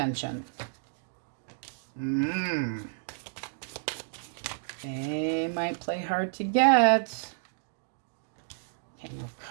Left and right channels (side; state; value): left; silent; digital silence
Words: They might play hard to get. King of